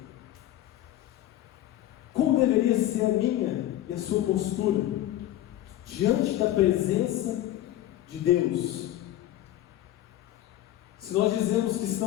Como deveria ser a minha e a sua postura diante da presença de Deus? Se nós dizemos que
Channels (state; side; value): quieter; right; 13.5 dB